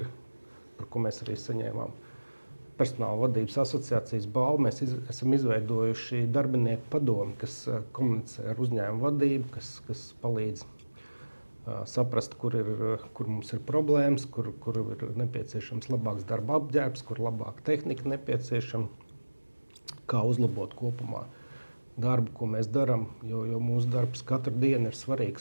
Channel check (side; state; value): both; inverted; correlation -1.00